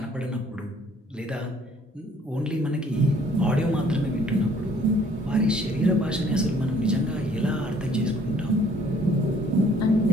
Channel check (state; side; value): normal; both; correlation 0.60